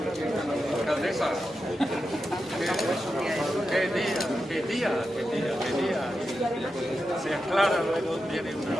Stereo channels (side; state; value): both; normal; correlation 0.89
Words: Alcaldesa. Qué día. Se aclara luego, viene una...